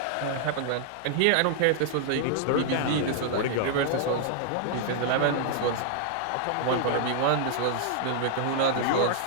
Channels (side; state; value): both; different; correlation -0.01